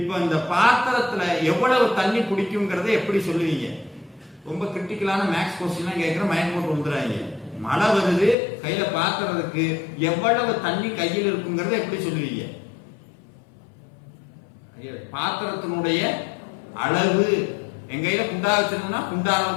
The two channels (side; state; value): right; drops out; at 8.3 s